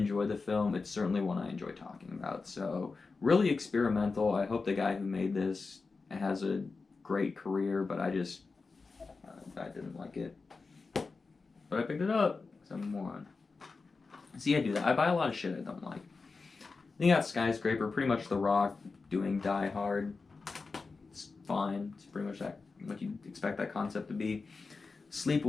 the film, it's certainly one I enjoy talking about. So, really experimental. I hope the guy who made this has a great career, but I didn't like it. But I picked it up because I'm a moron. See, I do that. I buy a lot of shit I don't like. Then you got Skyscraper, pretty much The Rock doing Die Hard. It's fine. It's pretty much that what you'd expect that concept to be.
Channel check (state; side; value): quieter; right; 4.2 dB